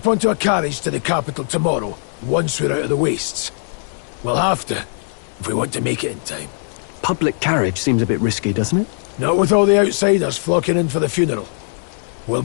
onto a carriage to the capital tomorrow, once we're out of the wastes. We'll have to, if we want to make it in time. Public carriage seems a bit risky, doesn't it? Not with all the outsiders flocking in for the funeral. We'll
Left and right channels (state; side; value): silent; right; digital silence